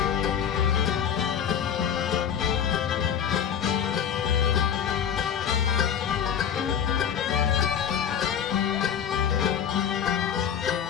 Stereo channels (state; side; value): quieter; right; 8.5 dB